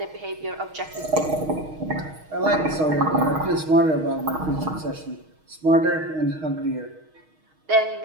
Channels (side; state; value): left; late; 6.4 ms